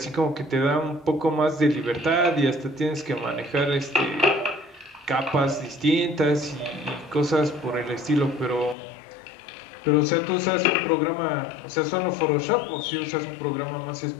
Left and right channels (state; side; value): drops out; right; at 8.8 s